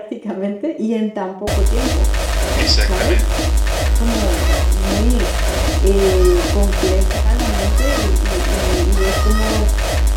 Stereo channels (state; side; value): identical; both; correlation 1.00